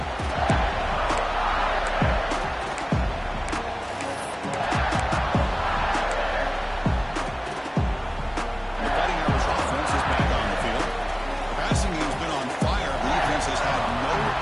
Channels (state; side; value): identical; both; correlation 1.00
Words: The Fighting Irish offense is back on the field. The passing game's been on fire. The defense has had no